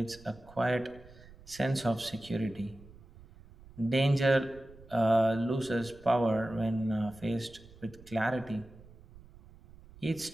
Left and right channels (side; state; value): right; noise; rumble, 22 dB below the sound